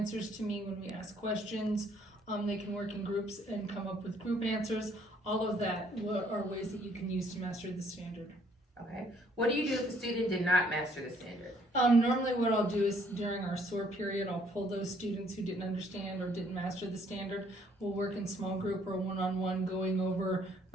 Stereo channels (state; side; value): normal; both; correlation 0.64